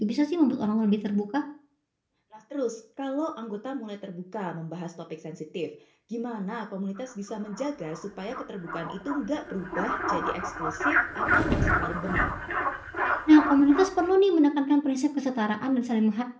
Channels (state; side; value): identical; both; correlation 1.00